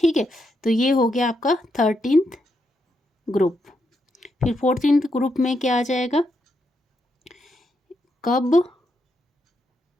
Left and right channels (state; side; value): normal; both; correlation 0.81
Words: है, तो ये हो गया आपका 13th ग्रुप। फिर 14th ग्रुप में क्या आ जाएगा? कब